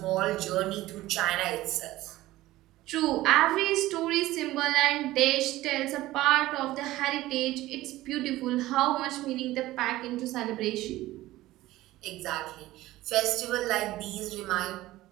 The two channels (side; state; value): left; quieter; 16.7 dB